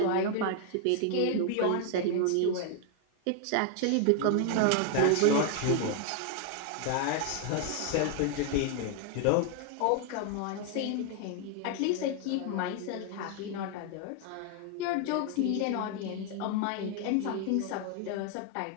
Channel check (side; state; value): both; different; correlation 0.00